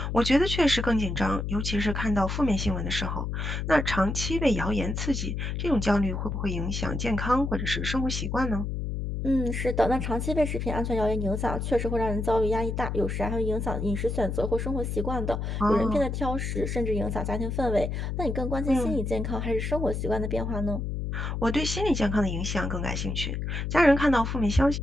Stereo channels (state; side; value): noise; left; hum, 3 dB below the sound